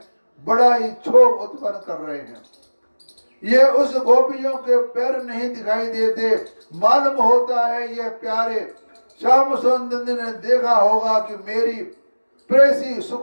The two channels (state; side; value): inverted; both; correlation -1.00